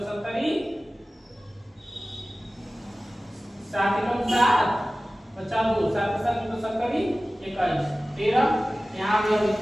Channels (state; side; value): normal; both; correlation 0.96